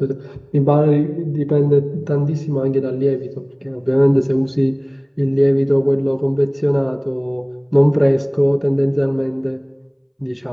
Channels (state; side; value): identical; both; correlation 1.00